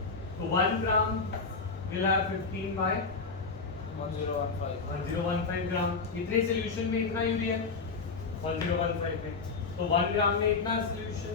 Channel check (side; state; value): right; quieter; 4.5 dB